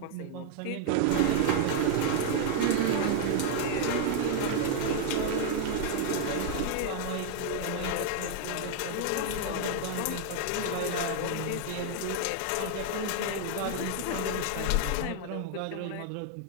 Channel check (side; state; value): both; different; correlation 0.00